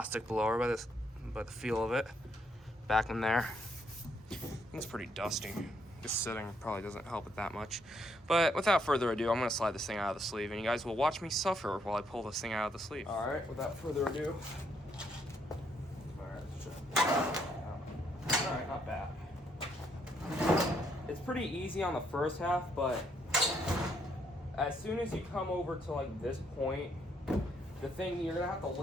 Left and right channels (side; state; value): both; normal; correlation 0.72